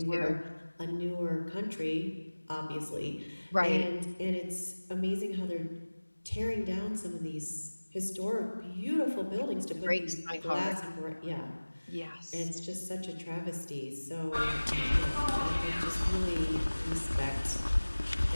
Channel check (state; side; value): inverted; both; correlation -1.00